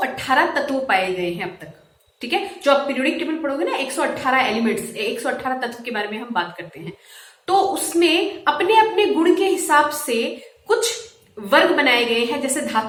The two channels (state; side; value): identical; both; correlation 1.00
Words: तत्व पाए गए हैं अब तक। ठीक है, जो आप पीरियोडिक टेबल पढ़ोगे ना, 118 एलिमेंट्स, 118 तत्व के बारे में हम बात करते हैं। तो उसमें अपने अपने गुण के हिसाब से कुछ वर्ग बनाए गए हैं, जैसे